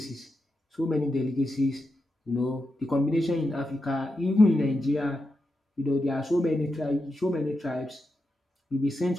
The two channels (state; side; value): normal; both; correlation 0.87